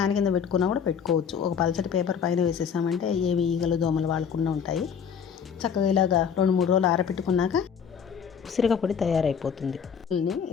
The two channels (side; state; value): right; quieter; 7.2 dB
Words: కింద పెట్టుకున్నా కూడా పెట్టుకోవచ్చు. ఒక పల్చటి పేపర్ పైన వేసేసామంటే ఏవి ఈగలు దోమలు వాడకుండా ఉంటాయి. చక్కగా ఇలాగా 2-3 రోజులు ఆరబెట్టుకున్నాక ఉసిరికాయ పొడి తయారైపోతుంది.